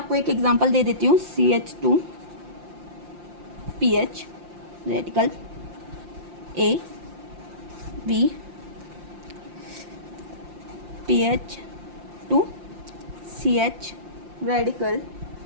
एक एग्जांपल दे देती हूँ। CH2 PH radical, A B PH2 CH radical,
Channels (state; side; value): late; left; 5.7 ms